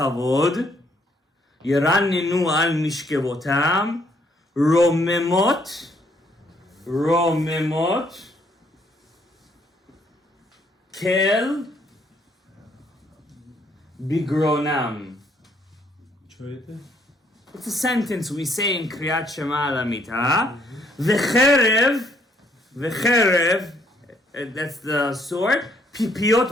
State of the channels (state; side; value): normal; both; correlation 0.68